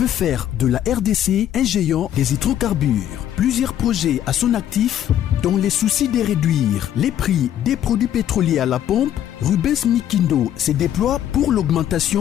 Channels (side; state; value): right; quieter; 10.9 dB